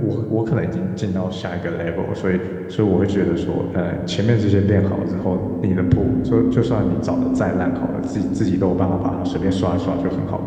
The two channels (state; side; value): identical; both; correlation 1.00